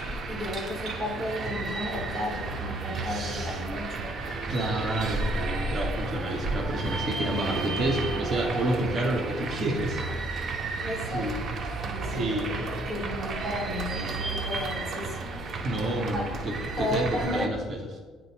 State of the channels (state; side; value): normal; both; correlation 0.64